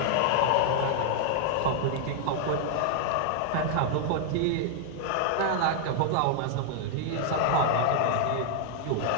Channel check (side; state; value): both; different; correlation -0.01